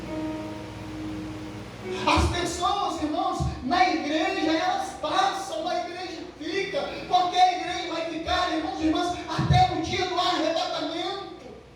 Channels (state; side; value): identical; both; correlation 1.00